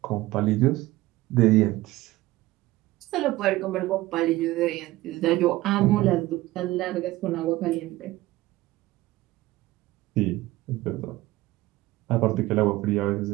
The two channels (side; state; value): left; quieter; 17.9 dB